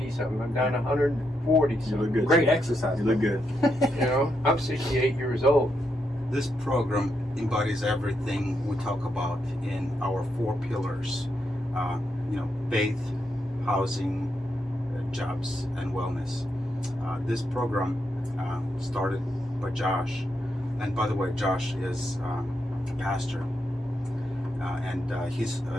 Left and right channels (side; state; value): both; normal; correlation 0.81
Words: something. I'm down to 140 You look something. good. Great exercise. You look good. You know, I'm 68 years old. This program embodies everything we talk about in our 4 pillars. You know, faith, housing, jobs, and wellness. This program started by Josh, and by the way, Josh is a pastor, and his